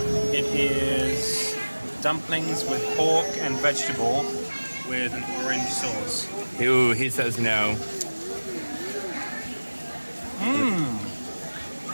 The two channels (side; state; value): both; inverted; correlation -1.00